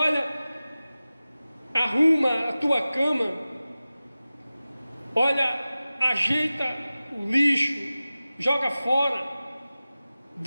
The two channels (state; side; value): inverted; both; correlation -0.96